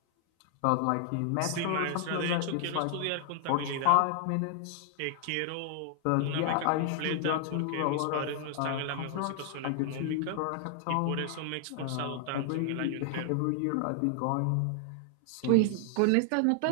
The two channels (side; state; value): both; different; correlation 0.00